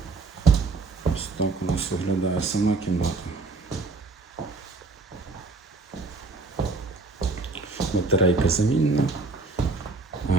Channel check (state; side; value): quieter; left; 3.8 dB